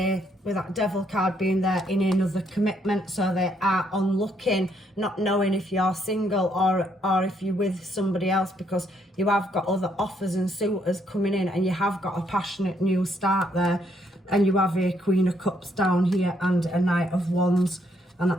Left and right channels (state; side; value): normal; both; correlation 0.72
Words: with that Devil card being there, in another commitment. So they are on looking, not knowing if you're single or if you're with somebody else, because you have got other offers and suitors coming in, and you have got a passionate new start there. And you have a Queen of Cups down here and a Knight of Wands and